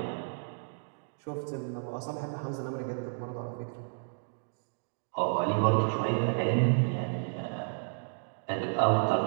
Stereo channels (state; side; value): silent; left; digital silence